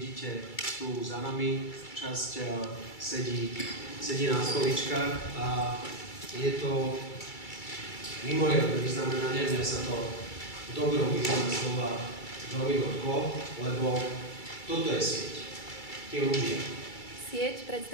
tu za nami, časť sedí na stoličkách a je to mimoriadne vyznamenanie. Mňa sa to v dobrom význame slova veľmi dotklo, lebo toto je sieť, tí ľudia. Sieť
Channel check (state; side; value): late; right; 2.3 ms